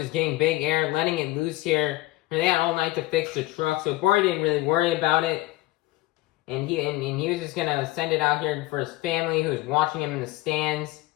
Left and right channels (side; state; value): right; quieter; 18.5 dB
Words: getting big air, letting it loose here. And they had all night to fix the truck, so Bari didn't really worry about it. And he was just gonna send it out here for his family who was watching him in the stands.